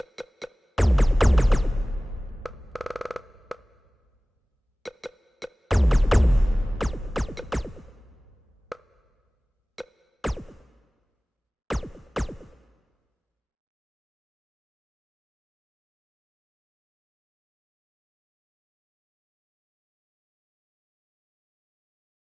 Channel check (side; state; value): both; normal; correlation 0.98